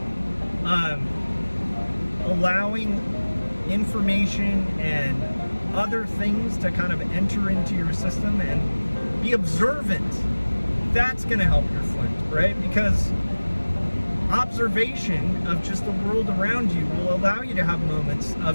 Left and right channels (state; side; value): inverted; both; correlation -1.00